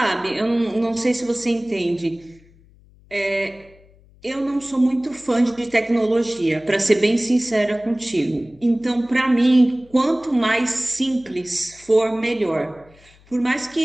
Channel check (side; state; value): left; noise; hum, 28 dB below the sound